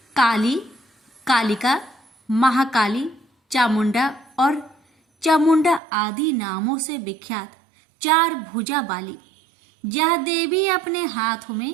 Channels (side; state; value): left; drops out; at 5.8 s